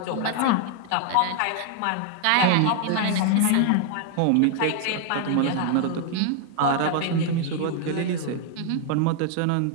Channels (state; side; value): different; both; correlation 0.00